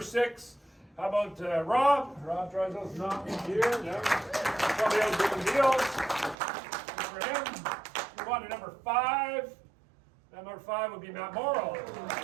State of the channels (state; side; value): drops out; left; at 6.4 s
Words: 6. How about Rob? Rob Drysdale's not here. No. Somebody else doing deals. Good for him. Move on to number 5. Number 5 would be Matt Morrow.